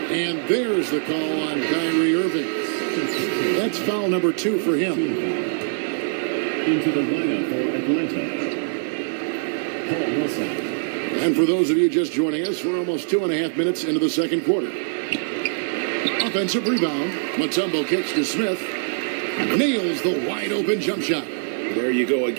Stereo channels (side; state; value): left; silent; digital silence